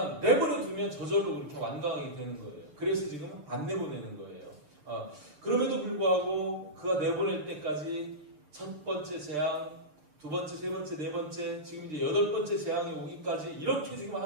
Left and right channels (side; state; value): left; late; 6.6 ms